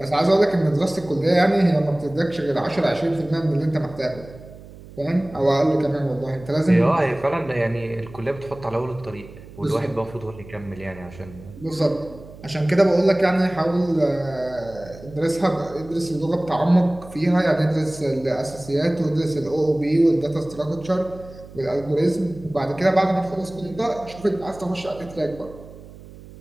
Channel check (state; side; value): noise; right; hum, 18 dB below the sound